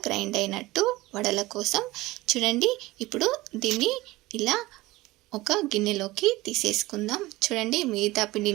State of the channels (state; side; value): quieter; left; 19.2 dB